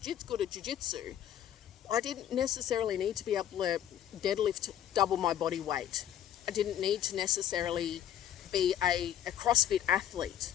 at jiu-jitsu, I didn't necessarily need to be able to deadlift double my body weight. I didn't need to necessarily be a CrossFit athlete.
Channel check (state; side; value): quieter; right; 10.8 dB